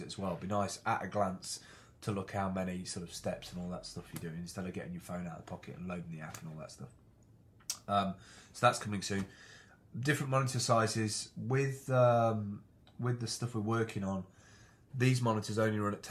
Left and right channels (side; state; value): both; identical; correlation 1.00